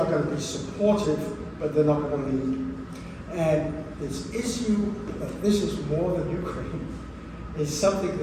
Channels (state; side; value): identical; both; correlation 1.00